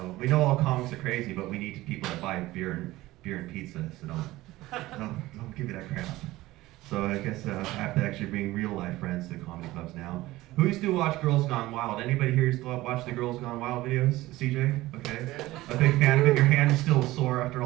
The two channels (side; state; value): left; quieter; 17.7 dB